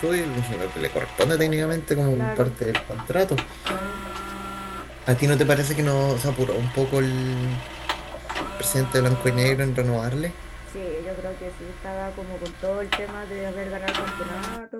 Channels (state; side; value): identical; both; correlation 1.00